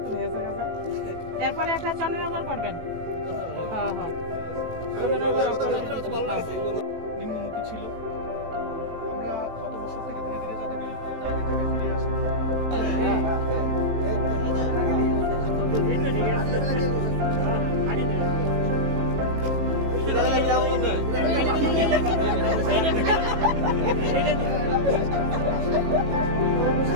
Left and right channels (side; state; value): left; late; 18 ms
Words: হয়েছে এরপরে একটা চন্দ্রনগর করবেন নিম্নমুখী ছিল আমরা গত বছর থেকে ধীরে ধীরে যাতে ফিরে আসি